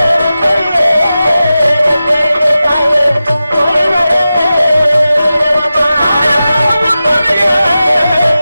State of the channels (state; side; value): inverted; both; correlation -0.93